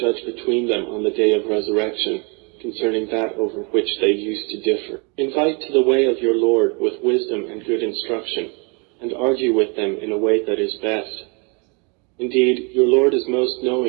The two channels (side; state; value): left; quieter; 32.7 dB